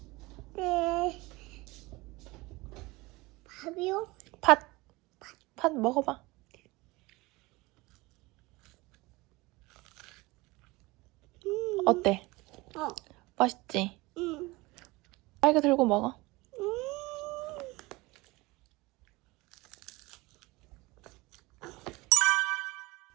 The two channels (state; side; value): quieter; left; 22.3 dB